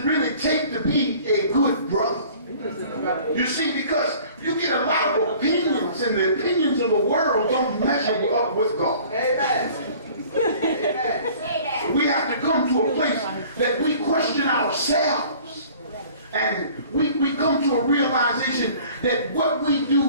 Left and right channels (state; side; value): inverted; both; correlation -0.49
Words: really take to be a good brother? You see, because you get a lot of opinions, and the opinions of the world don't measure up with God. Amen. Amen. We have to come to a place that we question ourselves. And we come to a realization that what we